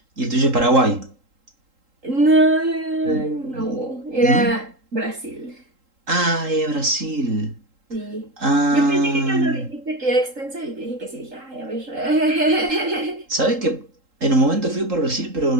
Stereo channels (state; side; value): late; left; 3.8 ms